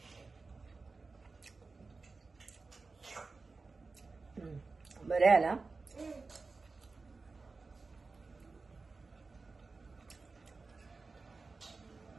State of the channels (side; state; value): left; quieter; 4.0 dB